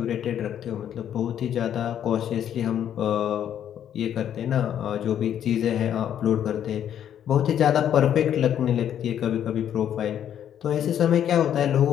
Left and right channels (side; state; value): right; quieter; 9.9 dB